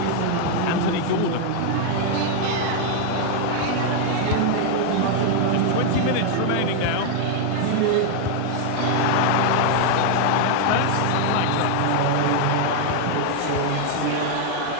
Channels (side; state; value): both; different; correlation 0.00